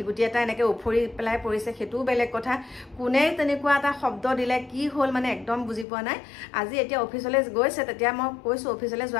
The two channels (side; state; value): right; drops out; at 5.9 s